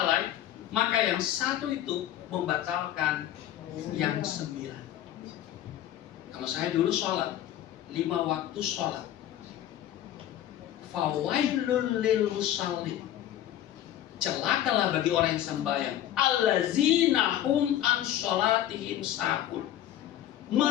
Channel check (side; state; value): right; quieter; 12.0 dB